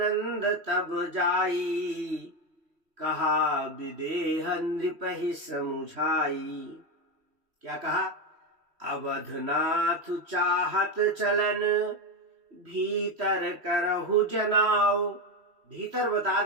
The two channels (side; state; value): left; late; 3.1 ms